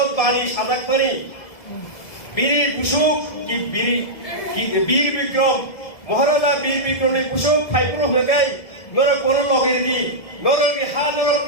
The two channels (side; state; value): right; late; 1.7 ms